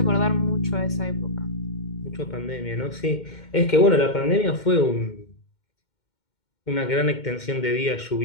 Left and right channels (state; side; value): late; right; 2.1 ms